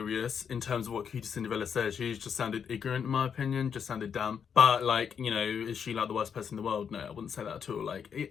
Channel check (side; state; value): right; quieter; 7.3 dB